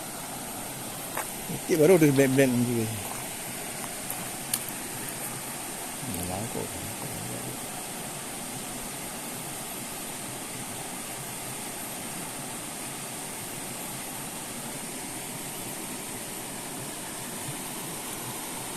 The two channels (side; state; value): both; identical; correlation 1.00